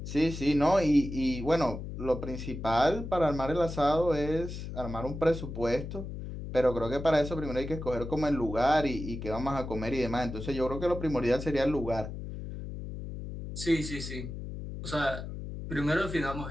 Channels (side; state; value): left; noise; hum, 8 dB below the sound